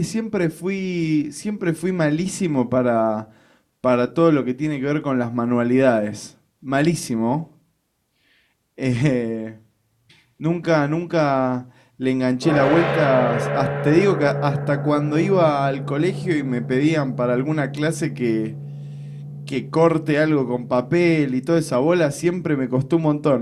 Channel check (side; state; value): both; identical; correlation 1.00